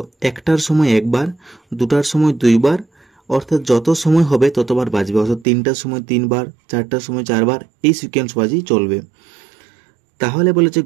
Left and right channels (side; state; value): left; drops out; at 5.5 s